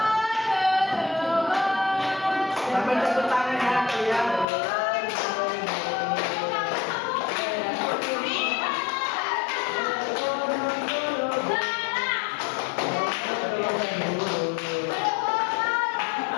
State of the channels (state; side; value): drops out; right; at 4.5 s